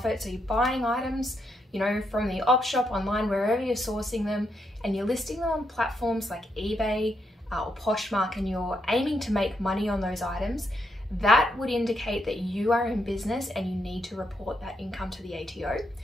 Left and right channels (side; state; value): both; normal; correlation 0.80